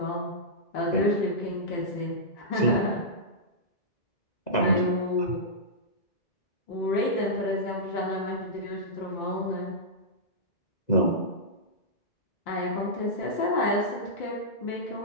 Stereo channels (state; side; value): late; right; 2.0 ms